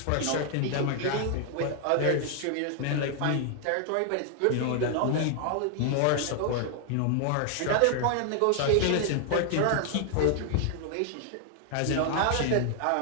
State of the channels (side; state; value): both; different; correlation 0.00